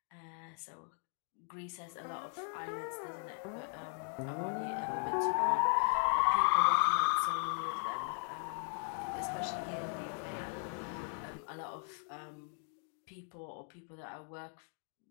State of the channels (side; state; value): right; silent; 53 dB below the other